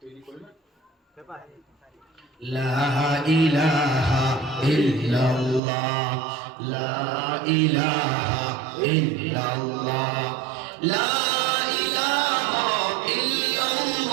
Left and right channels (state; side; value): drops out; left; at 5.6 s